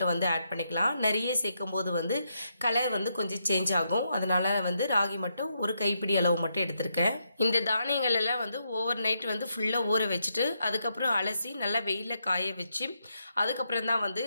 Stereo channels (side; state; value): both; inverted; correlation -0.80